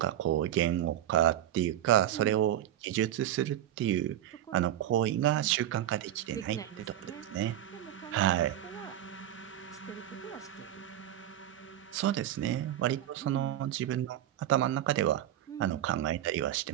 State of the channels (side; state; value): left; quieter; 12.0 dB